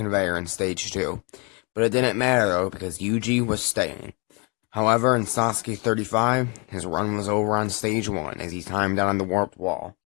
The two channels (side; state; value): right; quieter; 31.5 dB